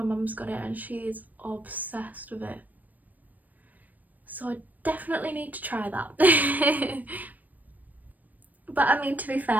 mum's got it and she's obsessed with it. So I definitely need to try that. But I mean, to be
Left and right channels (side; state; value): left; late; 0.082 ms